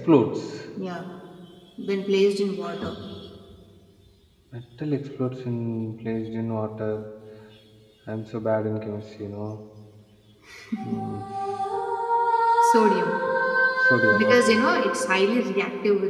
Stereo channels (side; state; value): both; identical; correlation 1.00